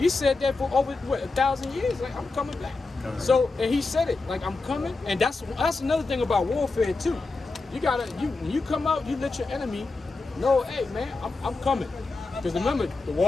said that for over, 1,000 years. Like, I'm coming back. So, and he said it, like, I'm coming. And that's another thing about warfare, too. You gotta, when you come out, you let your enemy know, hey, man, I'm coming. Because remember, the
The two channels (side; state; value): right; quieter; 3.6 dB